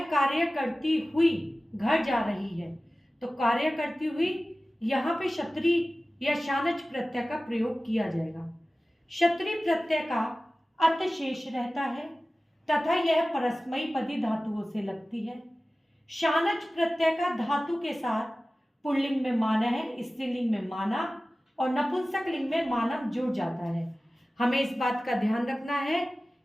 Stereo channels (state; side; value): normal; both; correlation 0.96